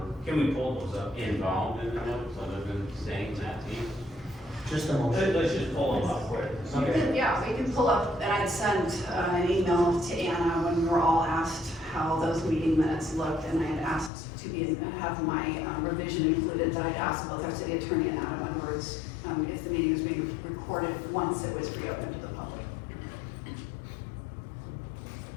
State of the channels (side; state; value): right; drops out; at 14.1 s